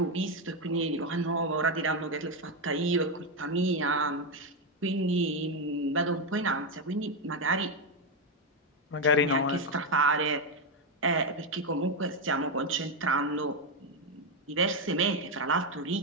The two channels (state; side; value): normal; both; correlation 0.06